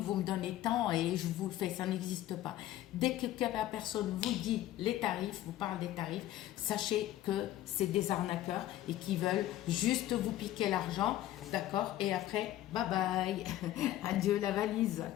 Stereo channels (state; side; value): quieter; right; 13.8 dB